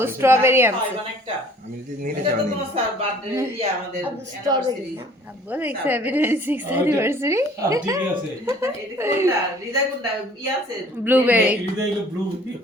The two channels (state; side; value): normal; both; correlation 0.53